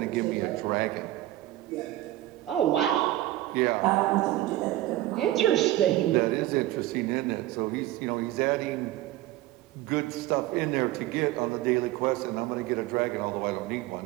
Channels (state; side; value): quieter; left; 15.5 dB